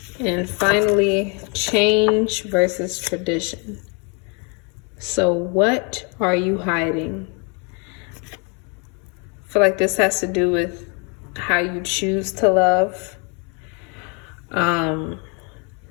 And finally, change versus tradition. So what are you hiding? I feel like this has to do with how you choose to love.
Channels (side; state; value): right; quieter; 34.8 dB